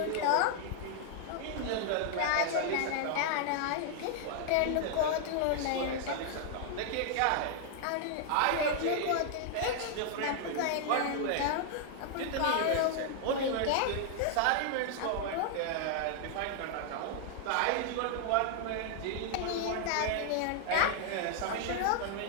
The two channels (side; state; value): both; different; correlation 0.00